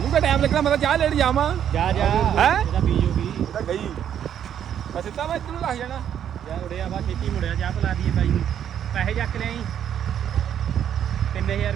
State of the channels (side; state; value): left; quieter; 9.5 dB